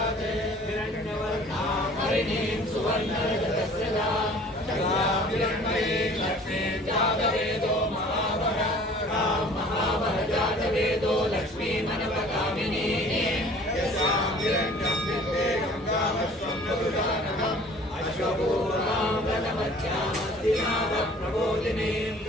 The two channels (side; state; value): both; normal; correlation 0.50